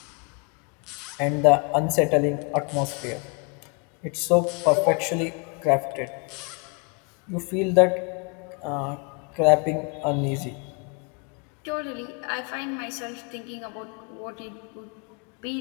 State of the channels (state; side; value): quieter; right; 34.9 dB